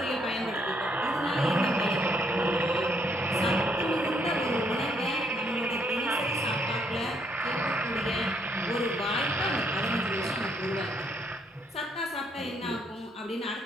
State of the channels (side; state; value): both; normal; correlation 0.71